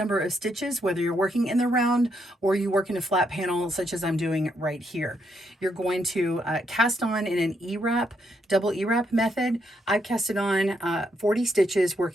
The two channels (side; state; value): both; normal; correlation 0.77